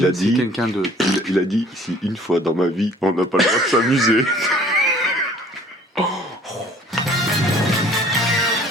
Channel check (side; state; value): both; normal; correlation 0.53